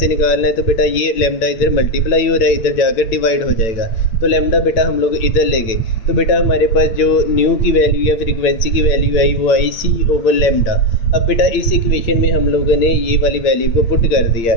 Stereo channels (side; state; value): right; late; 8.8 ms